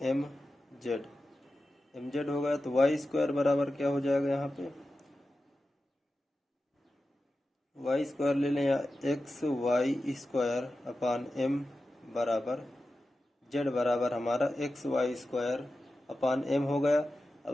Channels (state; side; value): normal; both; correlation 0.93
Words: mz हो गया। तो वाई स्क्वायर बराबर क्या हो जाएगा, यहाँ पे वाई स्क्वायर ले लें, या X Y square upon m बराबर z बराबर हमारा X Y square upon m हो गया। अब